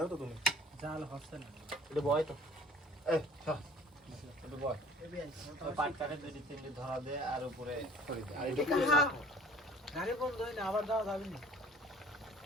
তো তুমি জাল হচ্ছে না এটা বয় তো এটা বয় পাট কাটে দুই তিনটে ধরা দে আর উপরে ছড়ি দে আর এটা গাড়ি বন্ধ হয় না আবার যাওয়া যাবে না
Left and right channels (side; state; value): both; normal; correlation 0.50